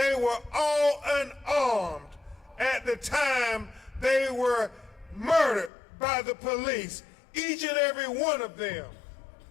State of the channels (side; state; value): right; drops out; at 5.7 s